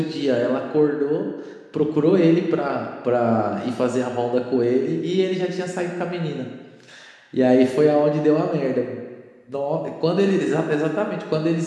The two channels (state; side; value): identical; both; correlation 1.00